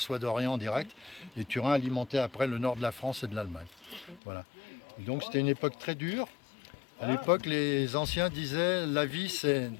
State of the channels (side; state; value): right; drops out; at 4.2 s